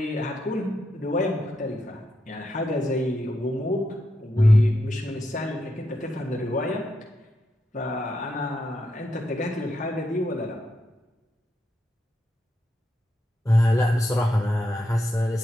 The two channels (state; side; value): normal; both; correlation 0.83